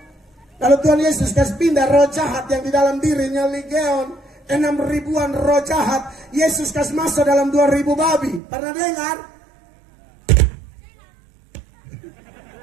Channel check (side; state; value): left; drops out; at 8.4 s